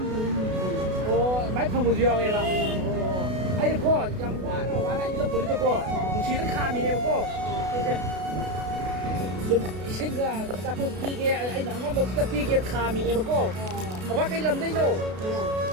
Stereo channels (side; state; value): left; late; 32 ms